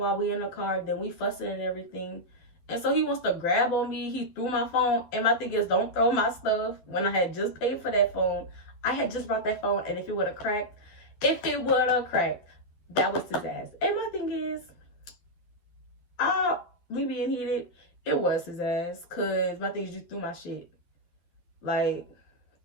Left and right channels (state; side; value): late; right; 12 ms